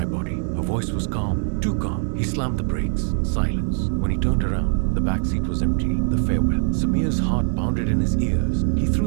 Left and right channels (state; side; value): silent; left; 64 dB below the other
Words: body." Her voice was calm, too calm. He slammed the brakes. Silence. When he turned around, the back seat was empty. The farewell. Samir's heart pounded in his ears. He